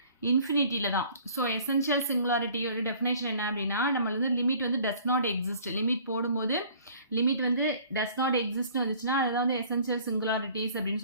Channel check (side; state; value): both; inverted; correlation -0.53